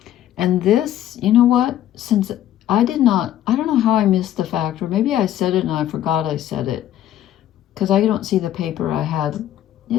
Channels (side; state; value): right; quieter; 12.1 dB